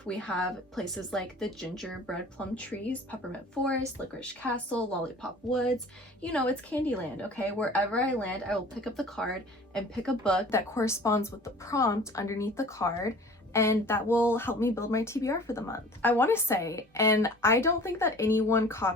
We have places like the Gingerbread Plum Trees, Peppermint Forest, Licorice Castle, Lollipop Woods. You know, it's Candyland, okay? Wherever I land, I will pick up the card and pick a book that corresponds with the prompt underneath the card, and that will help me build my TBR for the month. I want to say, and I don't think that anyone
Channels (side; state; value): both; normal; correlation 0.45